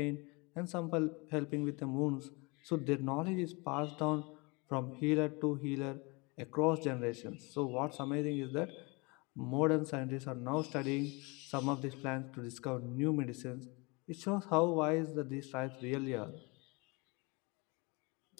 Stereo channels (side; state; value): right; quieter; 27.9 dB